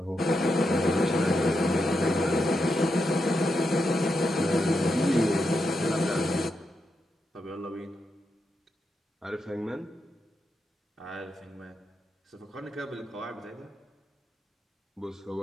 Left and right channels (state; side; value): normal; both; correlation 0.85